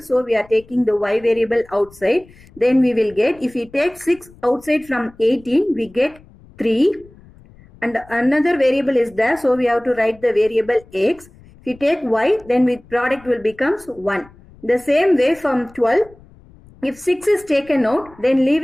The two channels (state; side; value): noise; left; rumble, 25 dB below the sound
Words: we are taking the y variable outside. Then we will get, if we take 6 outside from 18, we get 3. And another variable is there. So we have to write the variable x. If you take y, then with product will becomes 1. The same way from 12, if 6 is taken out, then